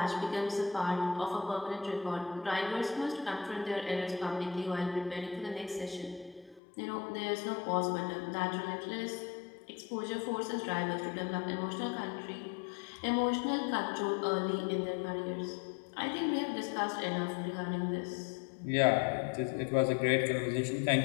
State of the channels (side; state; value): right; drops out; at 6.6 s